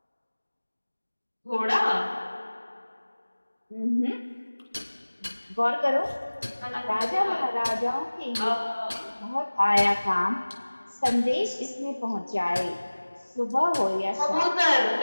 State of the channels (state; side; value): inverted; both; correlation -1.00